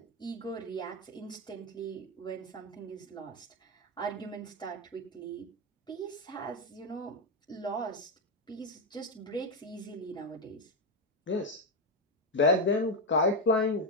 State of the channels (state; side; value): normal; both; correlation 0.06